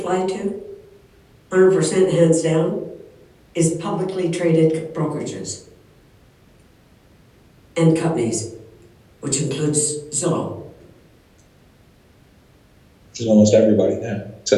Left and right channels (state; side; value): identical; both; correlation 1.00